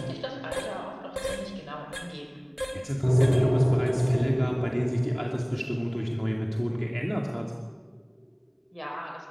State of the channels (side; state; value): both; identical; correlation 1.00